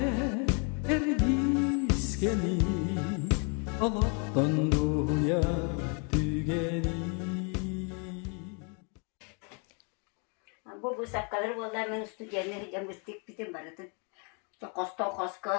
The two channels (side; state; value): right; quieter; 37.0 dB